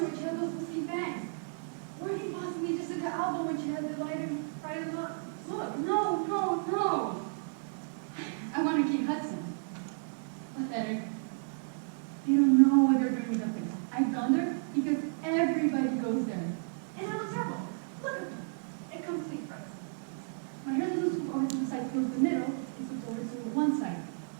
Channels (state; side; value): silent; left; 56 dB below the other